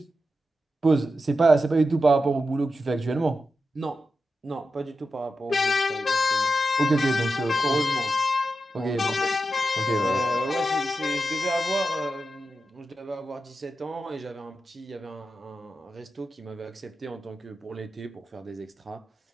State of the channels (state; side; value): normal; both; correlation 0.89